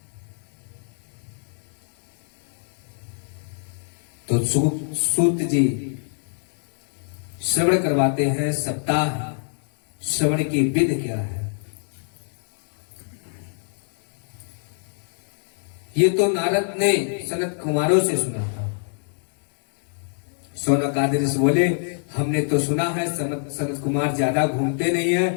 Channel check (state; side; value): silent; right; 62 dB below the other